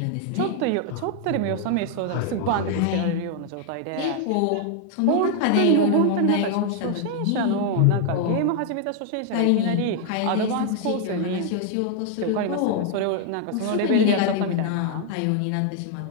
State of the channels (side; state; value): both; different; correlation 0.00